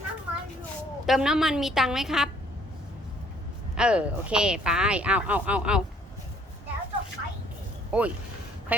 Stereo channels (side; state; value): both; normal; correlation 0.61